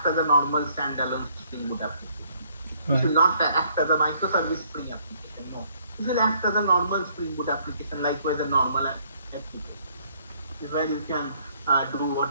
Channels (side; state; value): both; inverted; correlation -0.65